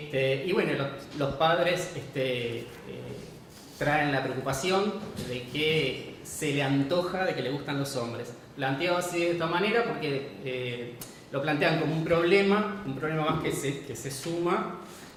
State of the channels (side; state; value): both; identical; correlation 1.00